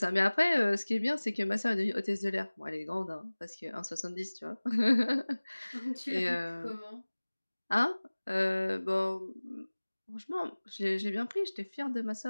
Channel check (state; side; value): inverted; both; correlation -1.00